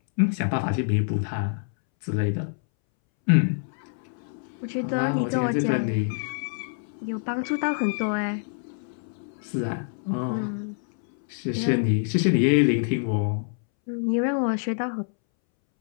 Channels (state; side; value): silent; right; 61 dB below the other